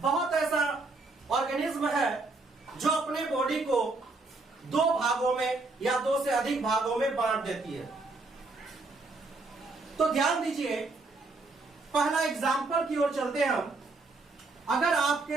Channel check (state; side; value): quieter; left; 3.5 dB